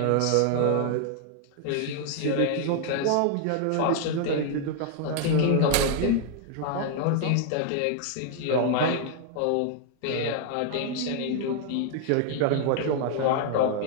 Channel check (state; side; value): different; both; correlation 0.00